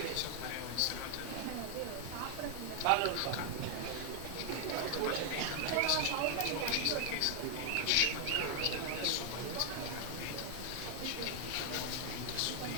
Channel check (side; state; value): both; different; correlation 0.00